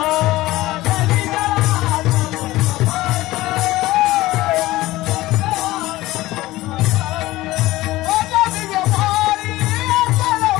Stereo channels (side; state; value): right; quieter; 17.6 dB